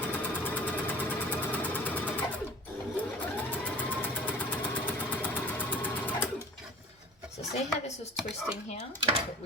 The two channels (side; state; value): both; normal; correlation 0.42